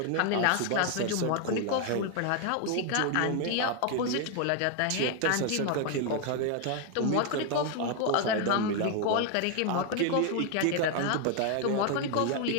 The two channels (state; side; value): different; both; correlation 0.00